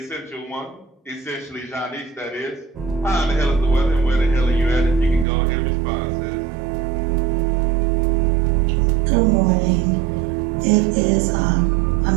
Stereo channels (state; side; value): drops out; left; at 5.2 s